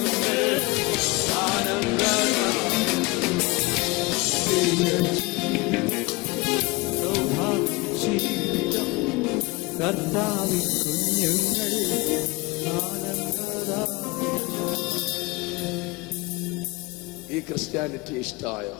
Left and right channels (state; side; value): quieter; right; 24.9 dB